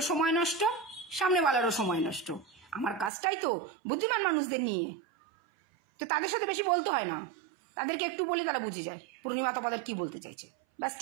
সময় নষ্ট, সামনেওয়ালারও সময় নষ্ট। আমার কাজটাই তো বুদ্ধিমান মানুষদের নিয়ে, তো তাদের সাথে বেশি বলতে হয় না, তাদেরকে একটু বলে তারা বুঝে যায় পূর্ণিমা তপাদার কি বলতে চাইছে, ব্যাস।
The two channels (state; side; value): drops out; left; at 3.1 s